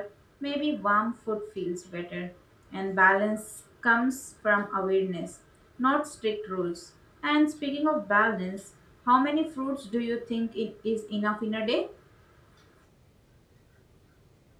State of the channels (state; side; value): identical; both; correlation 1.00